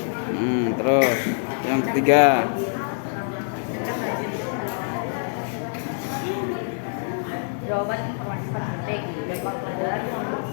Terus yang ketiga. Jawaban informasi penting, jadwal pelajaran,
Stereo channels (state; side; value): silent; right; 62 dB below the other